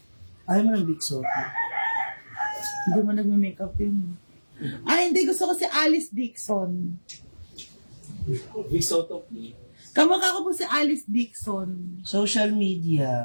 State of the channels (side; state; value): both; inverted; correlation -1.00